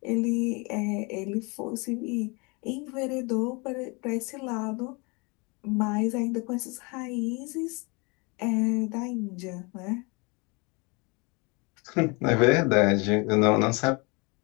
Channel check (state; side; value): quieter; right; 29.2 dB